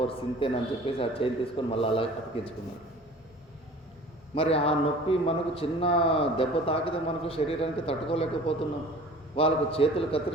సింతేనని చెప్పేసి ఆ చేయిని తీసుకొని మళ్ళీ అలా అతికించుకున్నాడు. మరి ఆ నొప్పి మనకు చిన్న దెబ్బ తాకితే మనకు శరీరానికి తట్టుకోలేకపోతున్నాం. వాళ్ళకు చేతులు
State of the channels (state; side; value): normal; both; correlation 0.45